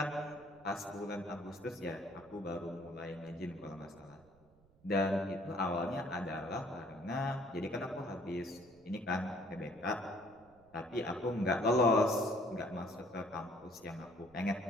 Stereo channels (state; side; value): noise; right; rumble, 29 dB below the sound